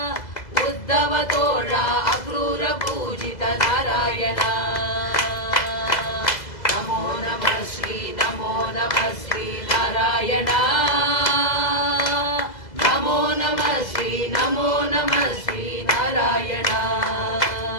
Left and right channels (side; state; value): right; late; 2.0 ms